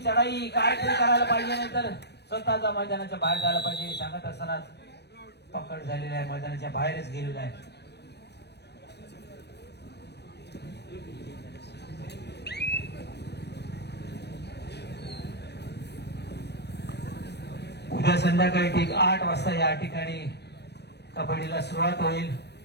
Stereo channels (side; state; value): right; late; 0.49 ms